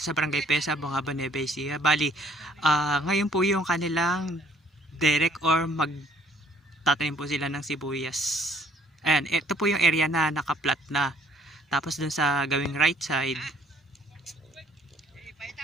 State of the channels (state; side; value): normal; both; correlation 0.60